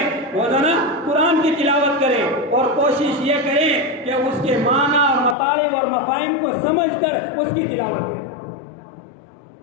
روزانہ قرآن کی تلاوت کریں، اور کوشش یہ کریں کہ اس کے معنی اور مطالب اور مفاہیم کو سمجھ کر اس کی تلاوت کریں۔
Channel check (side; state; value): right; drops out; at 5.4 s